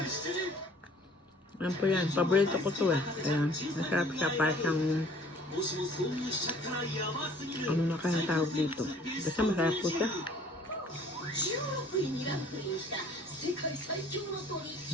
Ano po yan? Paborito ko to eh. Kaya masarap siya para siyang ano na kayang tawag dito. Basta masarap po siya.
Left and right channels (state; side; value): normal; both; correlation 0.53